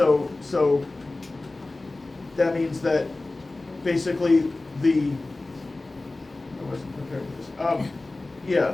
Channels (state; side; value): quieter; right; 3.1 dB